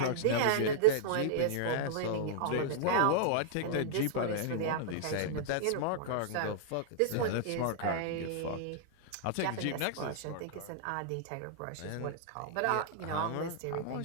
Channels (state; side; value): different; both; correlation -0.01